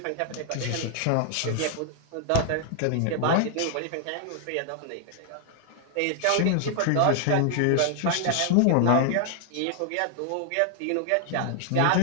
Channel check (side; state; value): both; different; correlation 0.00